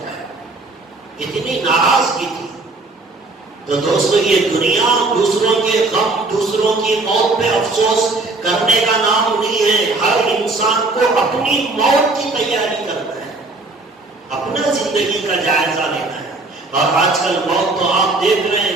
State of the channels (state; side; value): quieter; left; 3.3 dB